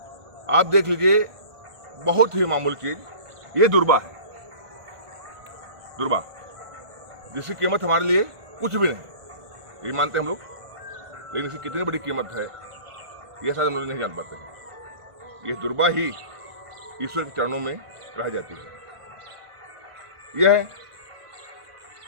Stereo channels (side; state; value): left; late; 1.5 ms